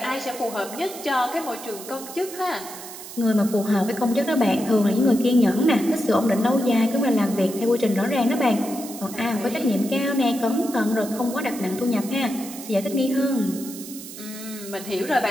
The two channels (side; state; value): right; noise; hiss, 13 dB below the sound